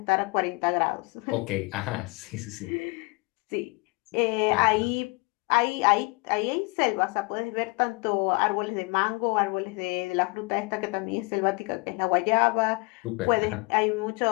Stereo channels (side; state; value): right; quieter; 28.4 dB